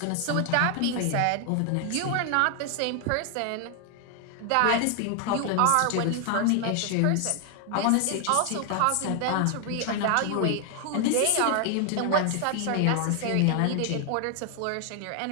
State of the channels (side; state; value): both; different; correlation 0.00